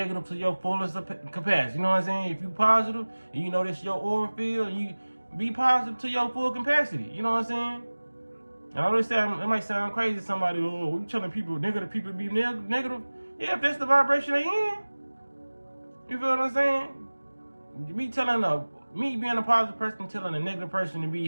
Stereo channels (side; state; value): both; inverted; correlation -1.00